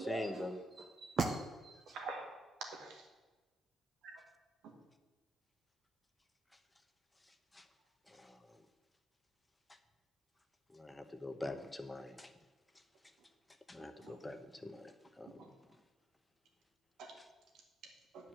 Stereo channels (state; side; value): normal; both; correlation 0.81